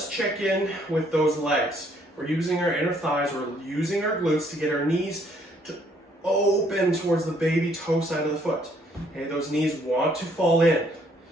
check in with those legs. We're using our inner thighs, we're using our glutes to get our knees to open towards the baby toe side of the foot. Okay, those knees want to fall in.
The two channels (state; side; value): normal; both; correlation 0.66